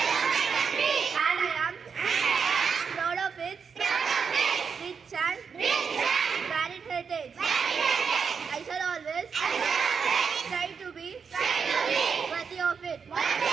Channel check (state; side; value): quieter; left; 6.1 dB